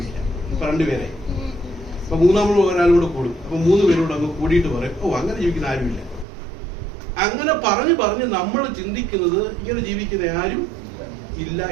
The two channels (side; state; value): left; drops out; at 6.2 s